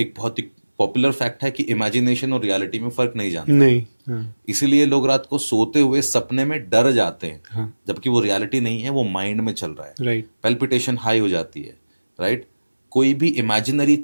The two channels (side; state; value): both; inverted; correlation -1.00